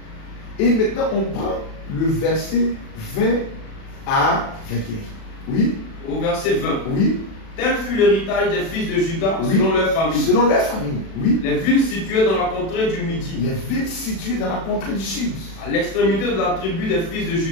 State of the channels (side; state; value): right; late; 36 ms